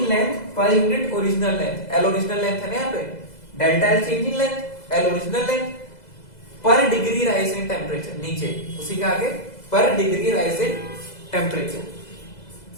length per unit original length, L original length है ना यहाँ पे, delta L change in length, L original length, per degree rise in temperature, नीचे उसी के आगे पर degree rise in temperature,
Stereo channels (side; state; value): right; late; 2.0 ms